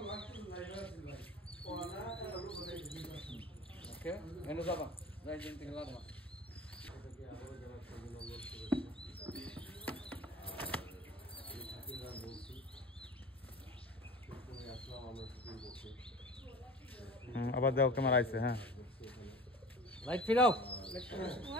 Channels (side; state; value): both; normal; correlation 0.39